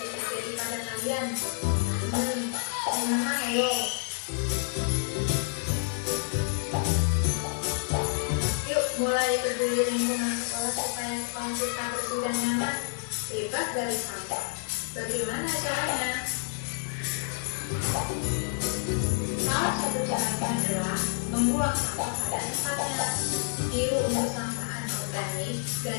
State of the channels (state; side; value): silent; right; digital silence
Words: terjadi pada kalian? Ayo. Mulai peduli lingkungan sekolah supaya sekolah kita bersih dan nyaman, bebas dari sampah. Bagaimana caranya? Salah satu caranya adalah membuang sampah pada tempatnya. Biru untuk sampah anorganik